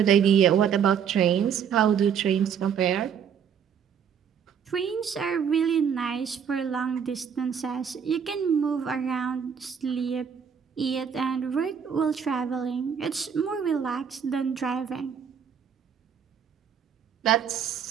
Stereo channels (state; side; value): quieter; left; 7.6 dB